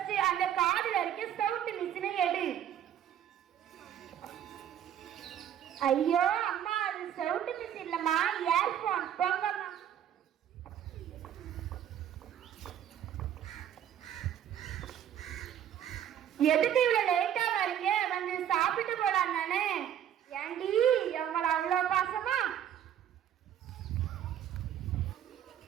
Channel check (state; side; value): quieter; left; 10.0 dB